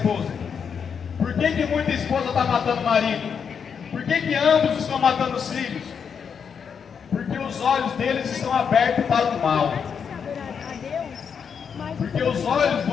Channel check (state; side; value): quieter; right; 6.8 dB